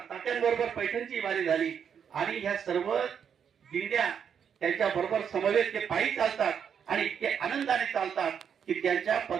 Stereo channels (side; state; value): left; quieter; 7.7 dB